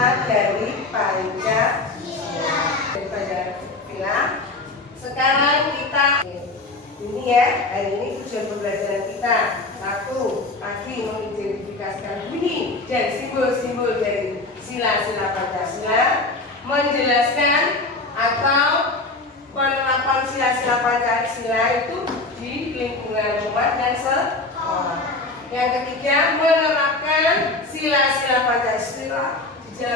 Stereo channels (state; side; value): quieter; right; 3.2 dB